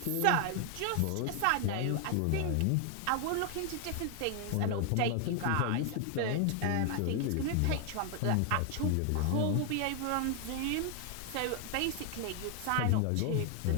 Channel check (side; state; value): both; different; correlation 0.00